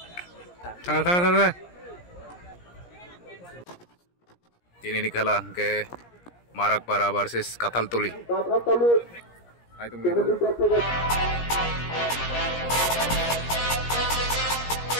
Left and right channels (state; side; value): late; right; 17 ms